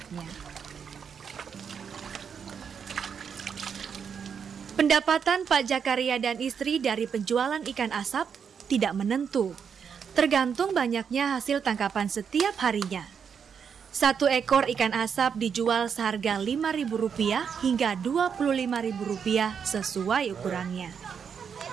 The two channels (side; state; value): left; quieter; 6.9 dB